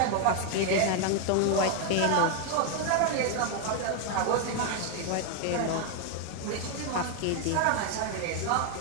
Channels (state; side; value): different; both; correlation 0.00